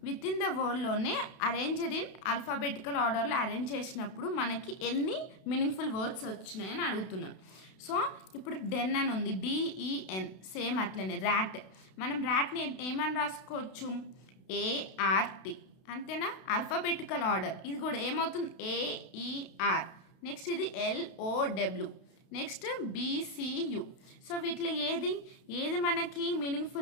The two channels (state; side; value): late; right; 32 ms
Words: within the వర్డ్లోనే arranged in alphabetical ఆర్డర్లో arrange చేసినప్పుడు మనకి ఎన్ని meaningful words వచ్చినాయని అడుగుతున్నాం. So ఇప్పుడు డెన్ అని ఉంది, DEN, సేమ్ అట్లనే. ర్యాట్, మనం ర్యాట్ని ఏమని రాసుకోవచ్చు, ART, అంతేనా. ఆల్ఫాబెటికల్ ఆర్డర్ ఇది కూడా ఏమవుతుంది, AER. నెక్స్ట్ ఇది LOW, నెక్స్ట్ BCU. సో వీటిలో ఏది మనకి